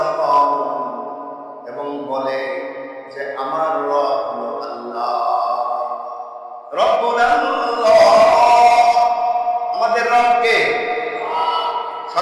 এবং বলে যে আমার রব হলো আল্লাহ, রব্বুল আল্লাহ, আমাদের রব কে?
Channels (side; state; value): both; identical; correlation 1.00